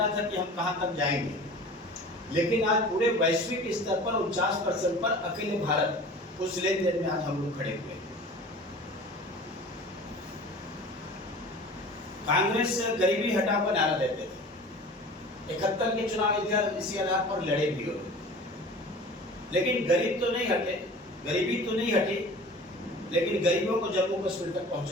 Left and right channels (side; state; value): both; normal; correlation 0.41